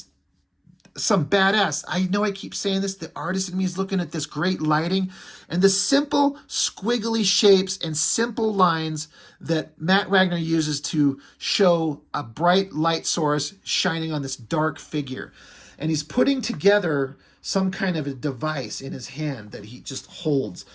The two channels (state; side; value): identical; both; correlation 1.00